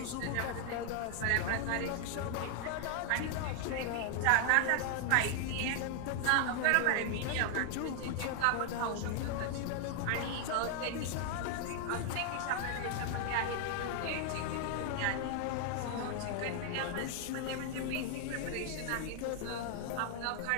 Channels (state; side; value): different; both; correlation 0.00